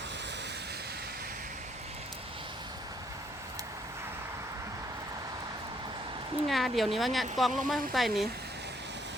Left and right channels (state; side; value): normal; both; correlation 0.68